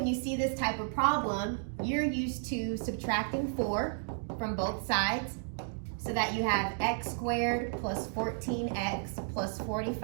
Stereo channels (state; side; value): silent; left; digital silence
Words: you see this type of problem, you're used to subtracting 4 from both sides so that you have x squared plus 14x plus